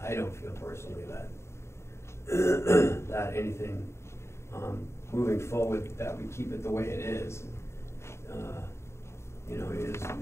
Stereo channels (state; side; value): late; right; 0.13 ms